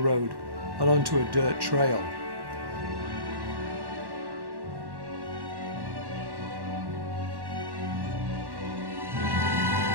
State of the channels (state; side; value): late; left; 1.1 ms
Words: and onto a dirt trail.